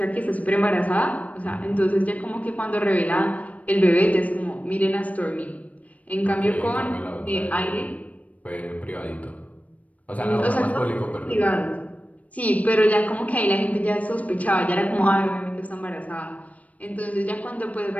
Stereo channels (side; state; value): right; late; 0.069 ms